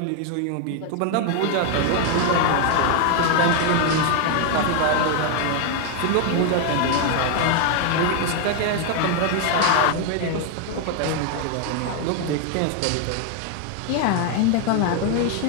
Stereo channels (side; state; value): both; different; correlation 0.00